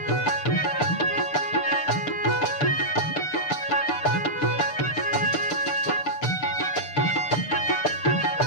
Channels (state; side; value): late; right; 6.8 ms